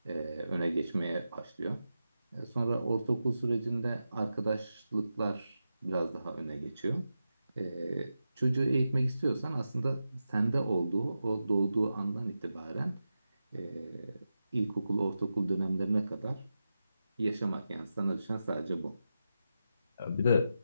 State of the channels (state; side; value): inverted; both; correlation -0.90